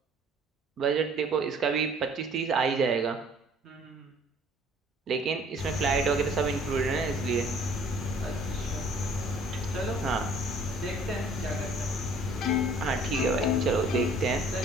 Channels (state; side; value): normal; both; correlation 0.55